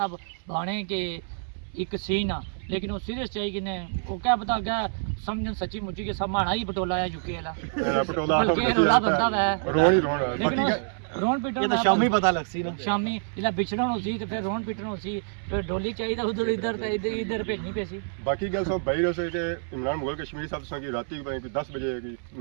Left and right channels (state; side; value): silent; left; 60 dB below the other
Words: बाणे के एक सीन आ लेकिन वो सीरियस चाहिए कि ने वो क्या पता क्या समझन सच्ची मुच्ची के सब माना ही पटोला है यूके वाला पटोला रोला बंदा है रोन ही रोन लेकिन रोन पीटन ये तो शामी पता लग सी ना शामी जिला बिछड़न होसी तो फिर रोन पीटन होसी फिर डोली चाहिए उधर इधर तो इधर भेजनी पैसी बाकी गल सब बाहर से के इमरान मुगल कश्मीरी साहब से राती 10 बजे की